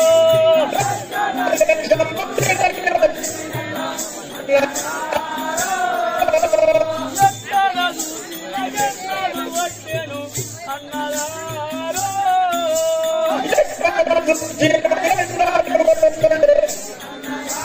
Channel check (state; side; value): identical; both; correlation 1.00